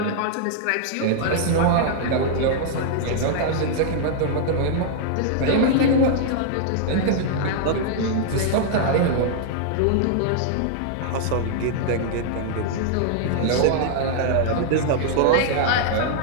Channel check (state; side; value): different; both; correlation -0.01